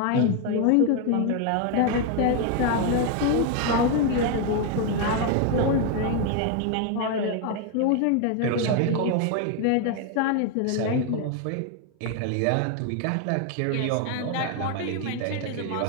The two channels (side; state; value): both; different; correlation 0.01